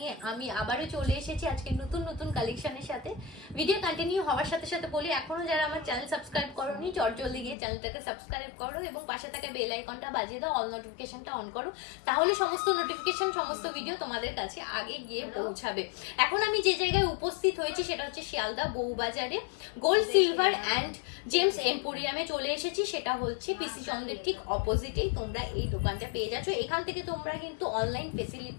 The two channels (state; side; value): drops out; right; at 7.6 s